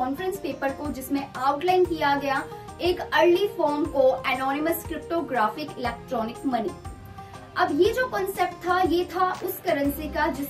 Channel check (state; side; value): identical; both; correlation 1.00